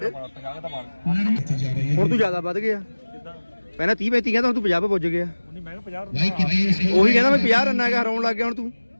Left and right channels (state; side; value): inverted; both; correlation -1.00